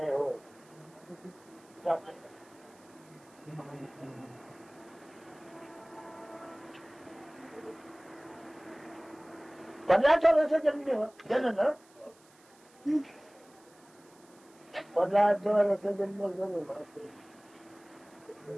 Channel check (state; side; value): noise; right; hiss, 28 dB below the sound